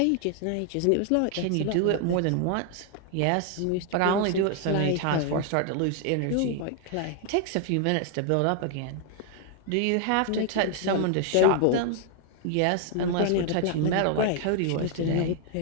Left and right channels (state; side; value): different; both; correlation 0.00